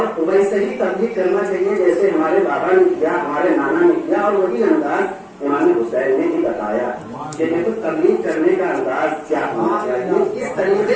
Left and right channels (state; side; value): identical; both; correlation 1.00